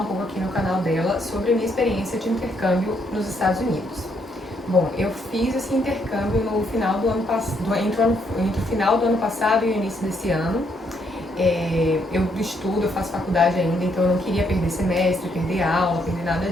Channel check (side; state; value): both; normal; correlation 0.73